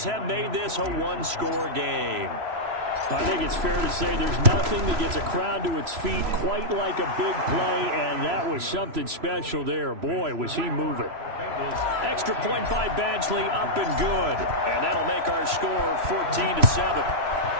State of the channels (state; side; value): late; left; 3.0 ms